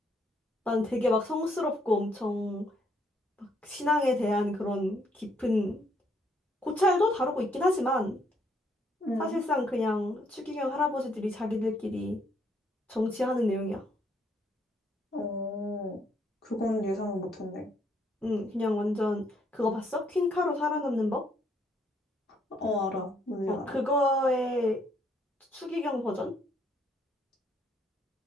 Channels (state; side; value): normal; both; correlation 0.70